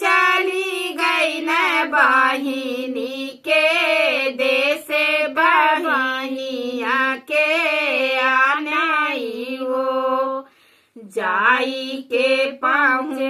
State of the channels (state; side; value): identical; both; correlation 1.00